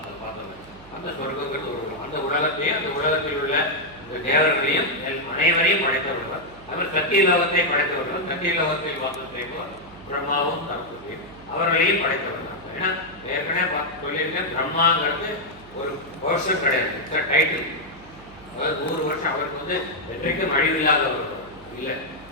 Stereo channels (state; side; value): noise; right; hum, 22 dB below the sound